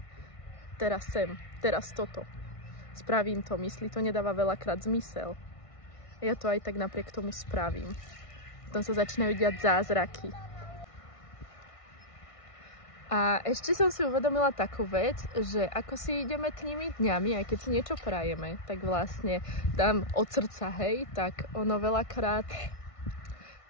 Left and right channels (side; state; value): right; late; 1.5 ms